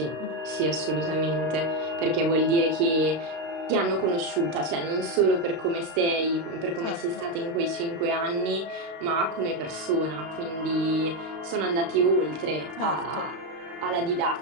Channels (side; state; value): left; late; 32 ms